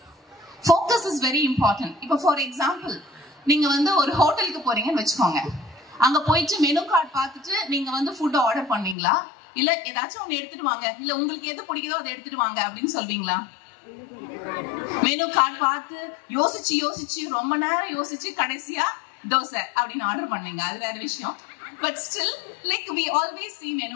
இஸ் வெரி இம்பார்ட்டன்ட். இப்போ ஃபார் எக்ஸாம்பிள், நீங்க வந்து ஒரு ஹோட்டலுக்கு போறீங்கன்னு வச்சுக்கோங்க. அங்க போயிட்டு மெனு கார்டு பார்த்துட்டு நீங்க வந்து ஃபுட் ஆர்டர் பண்ணீங்களா, இல்ல ஏதாச்சும் ஒண்ணு எடுத்துட்டு வாங்க, இல்ல உங்களுக்கு எது பிடிக்குதோ அதை எடுத்துட்டு வாங்க அப்படின்னு சொல்வீங்களா? மெனு கார்டு பார்த்து யோசிச்சு ரொம்ப நேரம் யோசிச்சு கடைசியா தோசை அப்படின்னு ஆர்டர் பண்ணீங்க, அது வேற விஷயம். But still, like we always see menu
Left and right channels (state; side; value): drops out; right; at 9.0 s